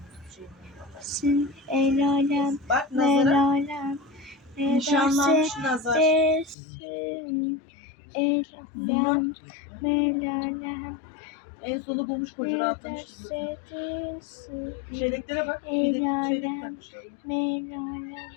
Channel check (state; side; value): drops out; right; at 6.6 s